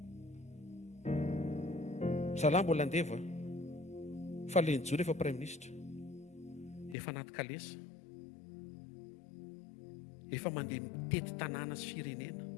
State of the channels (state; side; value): drops out; right; at 7.0 s